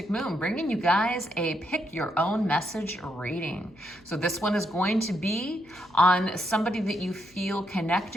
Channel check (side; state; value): left; noise; hum, 29 dB below the sound